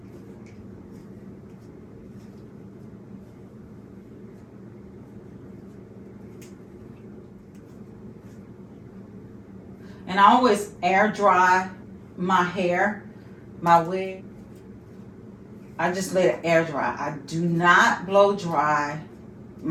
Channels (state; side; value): identical; both; correlation 1.00